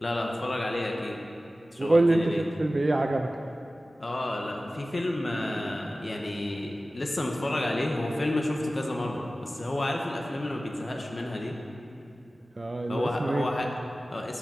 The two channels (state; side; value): normal; both; correlation 0.96